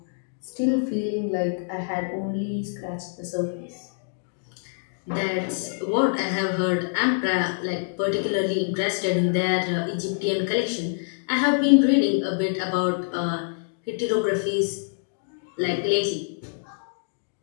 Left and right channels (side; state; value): right; silent; digital silence